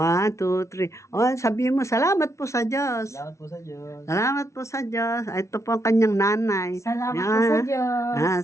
2, 3. Sabihin mo, salamat po sa Diyos. Salamat po sa Diyos. Salamat po sa Diyos. Ito po ang kanyang nanay. Salamat po sa Diyos.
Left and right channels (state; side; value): late; right; 0.14 ms